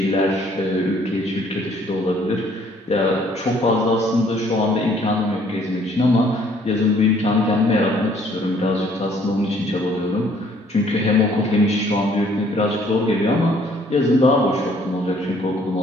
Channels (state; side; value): normal; both; correlation 0.61